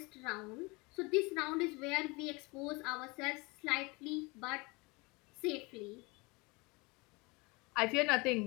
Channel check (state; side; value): quieter; right; 26.3 dB